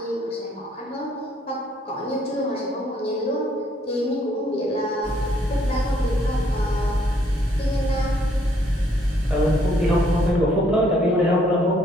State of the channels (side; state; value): both; normal; correlation 0.67